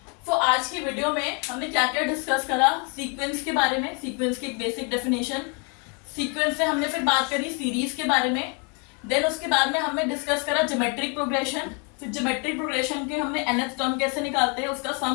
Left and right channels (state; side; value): quieter; right; 35.3 dB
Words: तो आज की वीडियो में हमने क्या क्या डिस्कस करा, सीक्वेंस के बारे में, सीक्वेंस की एक बेसिक डेफिनेशन, सीक्वेंस से हमने फिर बात करी सीरीज के बारे में, देन उसके बाद में हमने डिस्कस करा ज्योमेट्रिक प्रोग्रेशन, फिर ज्योमेट्रिक प्रोग्रेशन के हमने nth टर्म कैसे निकालते हैं, उसका